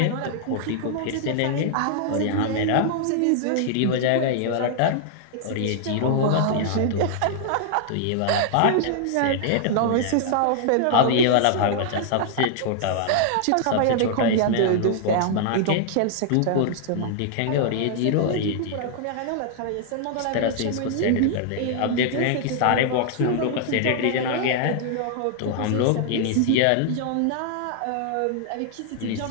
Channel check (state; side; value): different; both; correlation -0.01